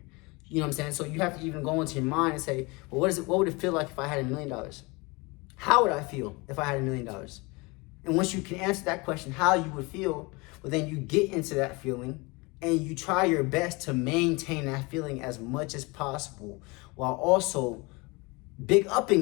You know what I'm saying? So you have to even go into your mind and say, well, what would it feel like if I had $1 million? How would I feel if I had $1 million? And once you can answer that question, how you would feel, well, then you get into that feeling and you try your best to maintain that feeling as much as possible, while also big upping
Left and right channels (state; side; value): quieter; right; 26.1 dB